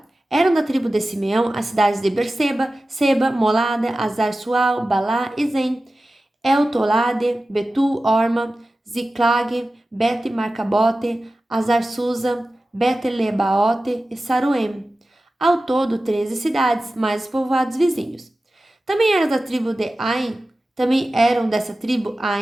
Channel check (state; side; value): normal; both; correlation 0.95